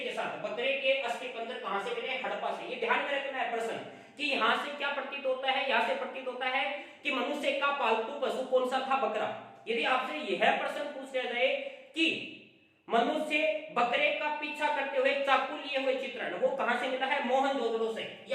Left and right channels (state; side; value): identical; both; correlation 1.00